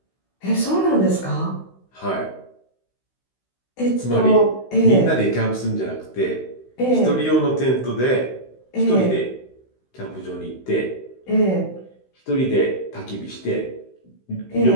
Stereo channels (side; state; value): right; late; 16 ms